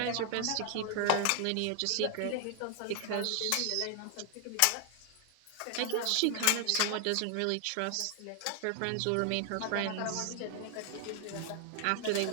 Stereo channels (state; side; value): different; both; correlation 0.00